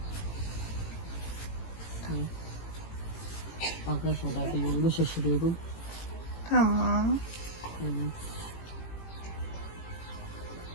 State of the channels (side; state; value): right; late; 18 ms